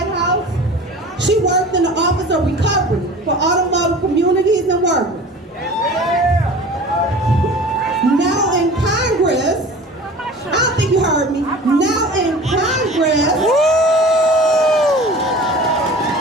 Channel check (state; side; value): normal; both; correlation 0.40